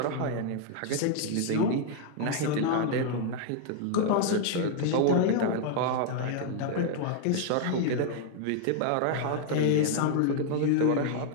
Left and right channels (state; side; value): different; both; correlation 0.00